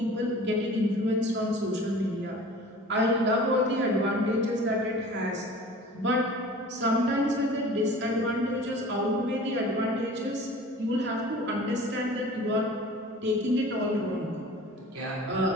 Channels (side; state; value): both; normal; correlation 0.43